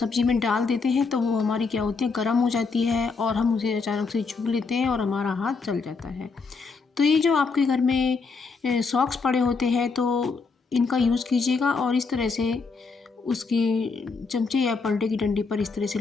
में डाल देते हैं, तो वो हमारी क्या होती है, गर्म हो जाती है और हम उसे अचानक से छू लेते हैं और हमारा हाथ जल जाता है। तो ये जो आपके घर में सॉक्स पड़े होते हैं तो इनका यूज़ कीजिएगा और इस तरह से उसकी चमचे या पलटे की डंडी पर इस तरह से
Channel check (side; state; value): right; quieter; 4.6 dB